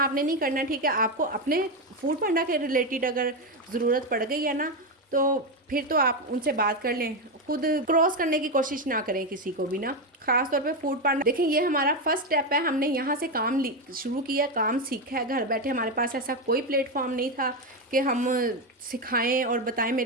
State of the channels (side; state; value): both; normal; correlation 0.10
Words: नहीं करना, ठीक है। आपको अपने फूड पांडा के रिलेटेड अगर ज़रूरत पड़ गई है ना, तो फिर तो आप उनसे बात कर लें, खुद क्रॉस करने की कोशिश ना करें किसी को भी ना, ख़ास तौर पे फूड पांडा। देखें ये हमारा फर्स्ट स्टेप है, हमने यहाँ से काम शुरू किया, काम सीखा है घर बैठे। हमारे पास ऐसा कोई प्लेटफॉर्म नहीं था कि हम सिखाएं और बताएं।